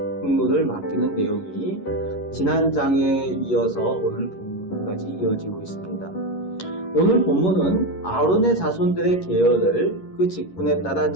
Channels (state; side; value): late; right; 11 ms